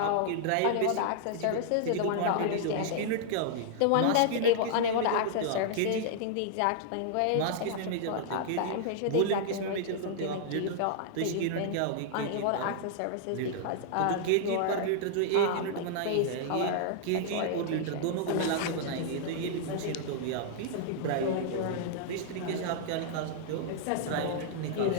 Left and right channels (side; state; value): both; different; correlation -0.01